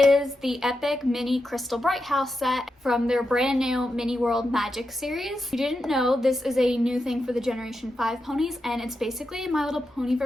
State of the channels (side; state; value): both; normal; correlation 0.87